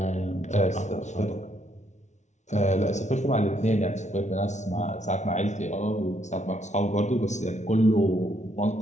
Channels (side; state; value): right; late; 0.34 ms